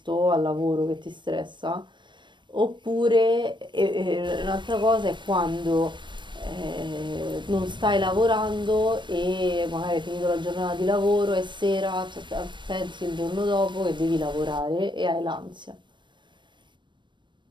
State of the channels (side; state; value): left; late; 0.22 ms